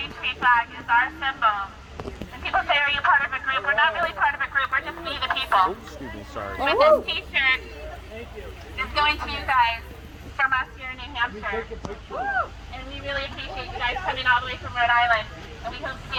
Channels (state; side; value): identical; both; correlation 1.00